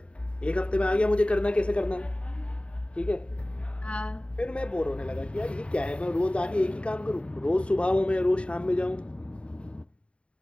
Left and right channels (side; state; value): right; late; 0.059 ms